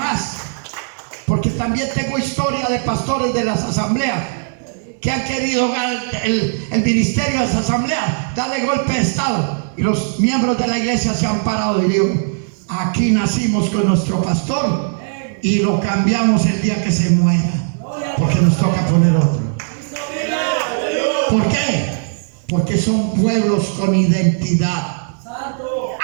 porque también tengo historia de pastores de las asambleas que han querido el ministerio de las asambleas darle golpe de estado, y los miembros de la iglesia se han parado y digo, aquí nacimos con nuestro pastor y lo cambiamos el día que se muera, porque nos toca poner otro. ¿Por qué? Porque son pueblos con identidad.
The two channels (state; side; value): silent; left; 67 dB below the other